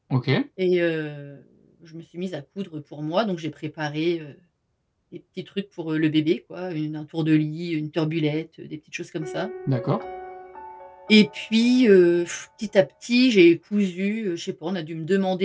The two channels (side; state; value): both; identical; correlation 1.00